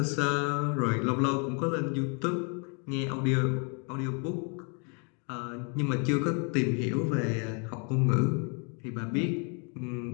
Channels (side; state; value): right; quieter; 36.7 dB